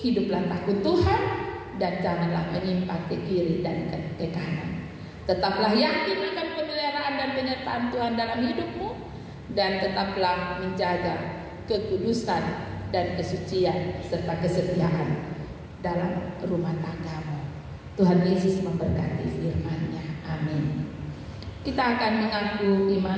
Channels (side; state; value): both; identical; correlation 1.00